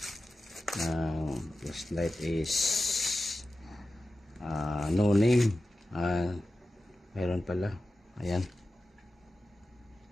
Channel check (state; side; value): normal; both; correlation 0.93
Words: ng flashlight is no name. Meron pala, ayan.